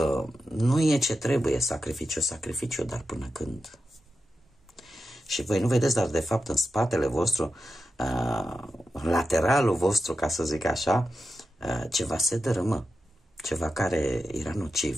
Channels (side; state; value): both; normal; correlation 0.90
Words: nu e ce trebuie, sacrificiu, dar până când? Și voi nu vedeți, dar de fapt în spatele vostru, în lateralul vostru, ca să zic așa, ceva se dărâmă, ceva care era